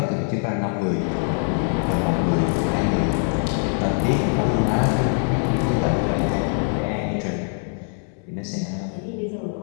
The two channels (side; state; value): right; silent; 57 dB below the other